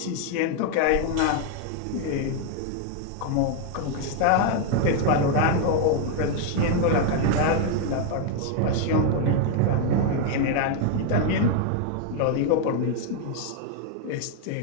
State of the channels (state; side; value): different; both; correlation 0.00